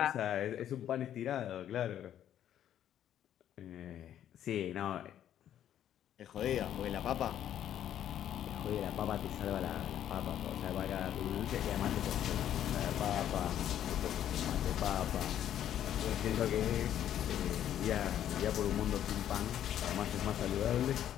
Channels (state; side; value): quieter; right; 10.8 dB